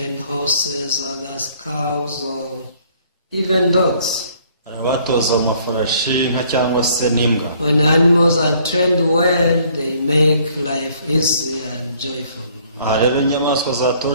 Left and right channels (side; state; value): both; inverted; correlation -0.61